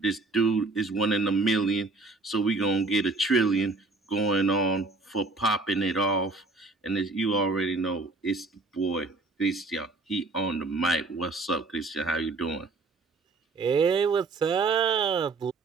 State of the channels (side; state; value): left; quieter; 3.6 dB